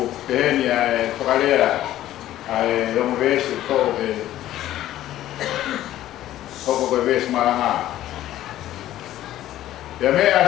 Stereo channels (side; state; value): right; quieter; 13.5 dB